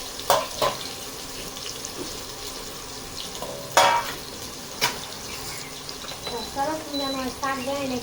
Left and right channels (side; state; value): both; identical; correlation 1.00